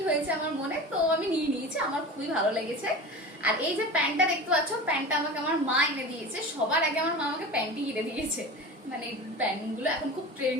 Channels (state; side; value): normal; both; correlation 0.32